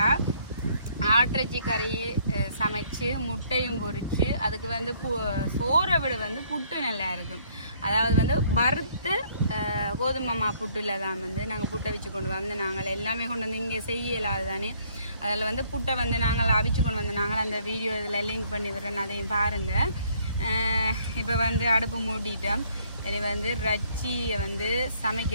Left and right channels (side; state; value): both; inverted; correlation -0.64